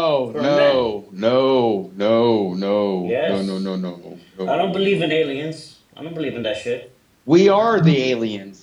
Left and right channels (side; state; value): both; identical; correlation 1.00